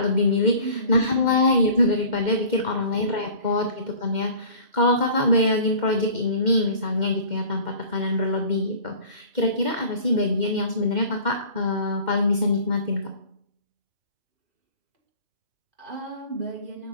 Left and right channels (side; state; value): left; late; 2.1 ms